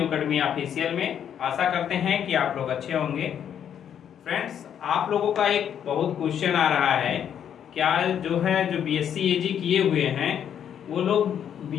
academy official में। आशा करते हैं कि आप लोग अच्छे होंगे। फ्रेंड्स, आप लोगों का एक बहुत क्वेश्चन आ रहा है, क्या जो बीएससी एजी किए हुए हैं वो लोग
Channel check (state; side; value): quieter; right; 9.0 dB